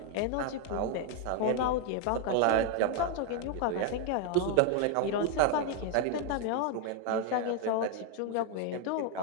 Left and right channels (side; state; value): both; different; correlation 0.00